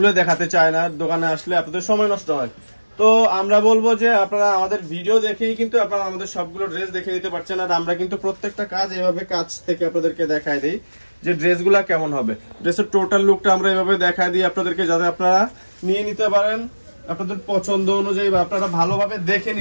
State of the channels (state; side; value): inverted; both; correlation -1.00